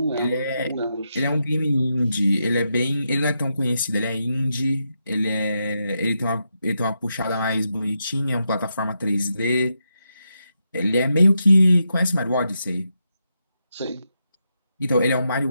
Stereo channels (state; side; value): inverted; both; correlation -0.84